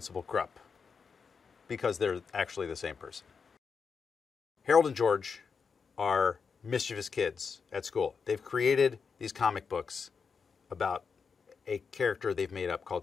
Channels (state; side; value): quieter; right; 5.6 dB